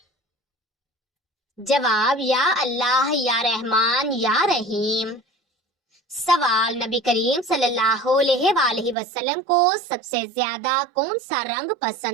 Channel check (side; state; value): left; drops out; at 9.0 s